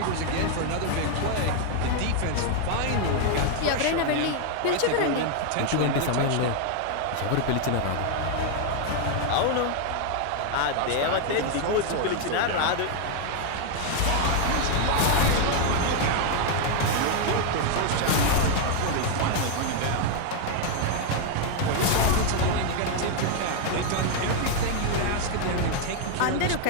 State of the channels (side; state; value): both; different; correlation 0.00